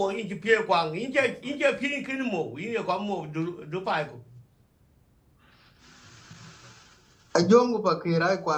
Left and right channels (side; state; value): both; identical; correlation 1.00